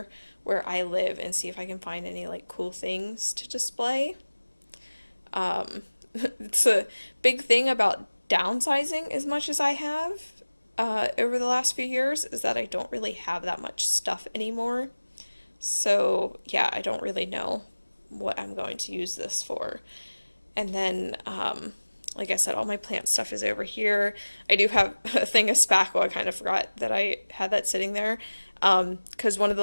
where I live and see if I can find any like cool things to display. It's a big thing about downsizing as much as I have over the last few years, is that I don't really have that much stuff anymore. So yeah, I don't really know what I'm going to use this for. And then, like I said, all my plant stuff is over here. I do have a thing of spackle. I kind of forgot that I had that sitting there. Because one of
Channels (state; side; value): inverted; both; correlation -1.00